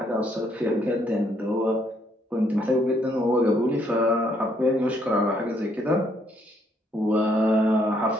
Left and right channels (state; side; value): normal; both; correlation 0.70